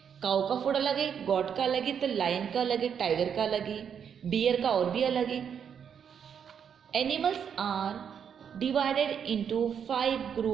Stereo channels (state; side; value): quieter; left; 7.7 dB